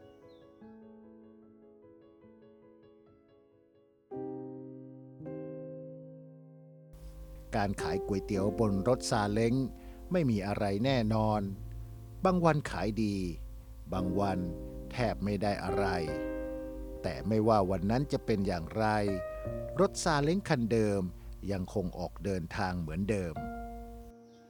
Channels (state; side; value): identical; both; correlation 1.00